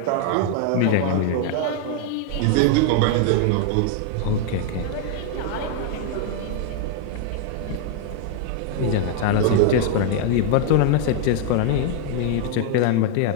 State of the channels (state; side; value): different; both; correlation 0.00